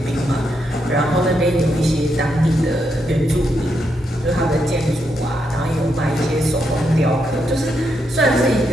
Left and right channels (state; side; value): normal; both; correlation 0.80